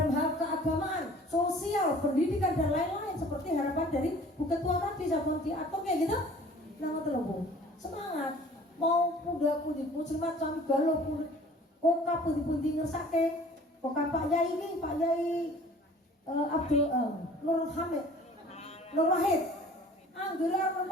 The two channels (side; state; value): both; normal; correlation 0.49